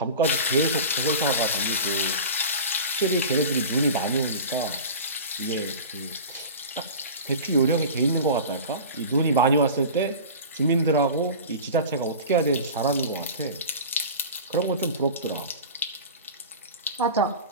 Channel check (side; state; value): both; inverted; correlation -0.34